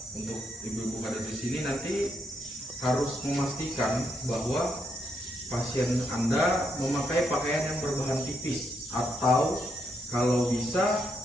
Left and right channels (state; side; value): normal; both; correlation 0.78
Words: untuk ibu-ibu kader di sini nanti harus memastikan bahwa pasien Anda memakai pakaian yang berbahan tipis atau kalau bisa